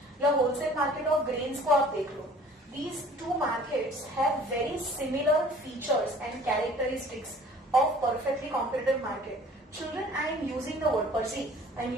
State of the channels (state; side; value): normal; both; correlation 0.50